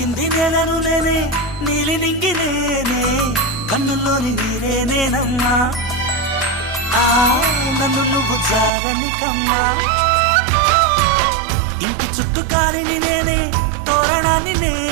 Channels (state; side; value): drops out; left; at 8.7 s